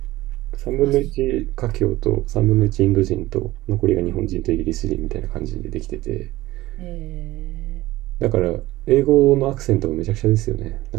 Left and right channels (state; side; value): quieter; left; 17.6 dB